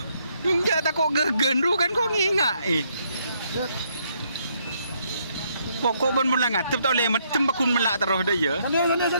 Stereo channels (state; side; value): inverted; both; correlation -0.72